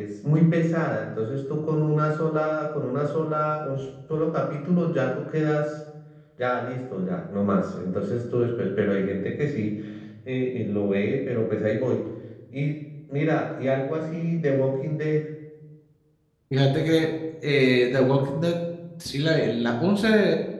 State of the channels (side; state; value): both; identical; correlation 1.00